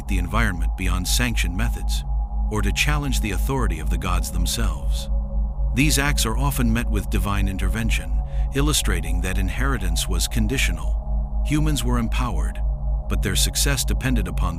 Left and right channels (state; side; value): identical; both; correlation 1.00